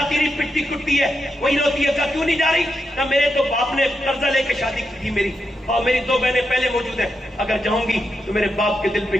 نہیں، پٹتی کٹتی ہے، وہی روتی ہے. کیوں نہیں جا رہی؟ کہ میرے تو باپ نے قرضہ لے کے شادی کی تھی میری، اور میری 2 بہنیں پہلے موجود ہیں. اگر جاؤں گی تو میرے باپ کے دل پہ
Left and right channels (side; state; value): both; normal; correlation 0.85